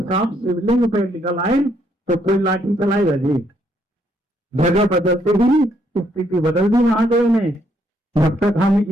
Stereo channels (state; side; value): normal; both; correlation 0.72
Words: सांप शिवलिंग पे निकल आए तो कोई लाठी चलाएगा जी। जगह बदलते ही स्थिति बदल दी महादेव ने। जब तक हम